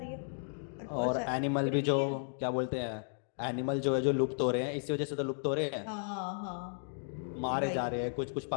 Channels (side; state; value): right; silent; digital silence